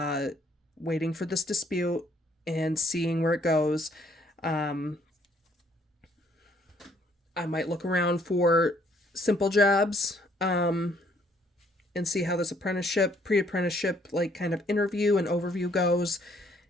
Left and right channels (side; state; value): both; normal; correlation 0.65